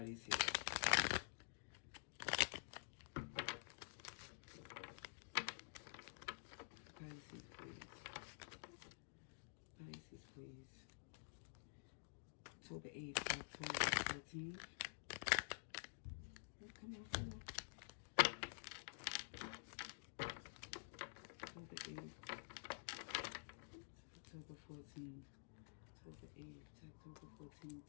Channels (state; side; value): silent; right; digital silence